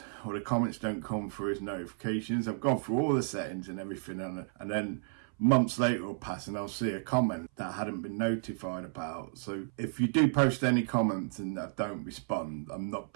or the comments don't come through as notifications. I've gone through all the settings and everything, and then months later will pass and I'll see a comment that I hadn't been notified about. So if you do post any comments and I don't respond, I'm not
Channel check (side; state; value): left; silent; 56 dB below the other